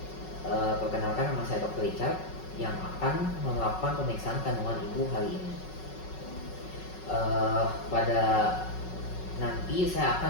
perkenalkan, nama saya Dr. Richard yang akan melakukan pemeriksaan kandungan Ibu hari ini. Pada nanti saya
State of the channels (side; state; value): right; late; 5.4 ms